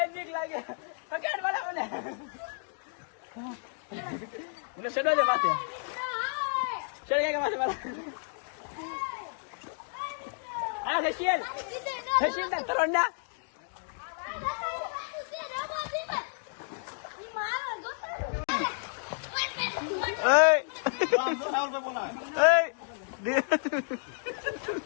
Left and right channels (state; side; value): silent; right; digital silence